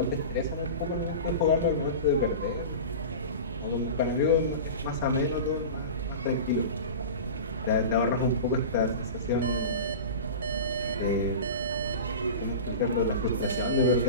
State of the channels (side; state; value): both; inverted; correlation -0.31